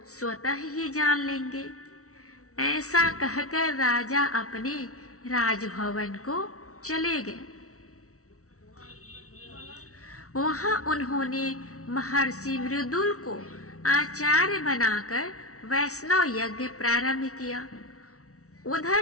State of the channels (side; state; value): right; late; 0.64 ms